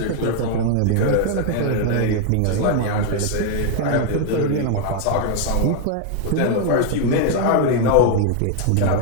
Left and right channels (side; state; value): both; different; correlation 0.00